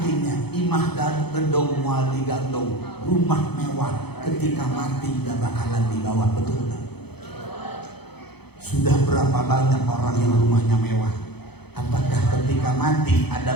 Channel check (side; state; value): right; late; 0.98 ms